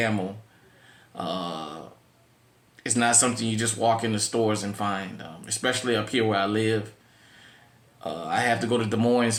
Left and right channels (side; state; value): both; identical; correlation 1.00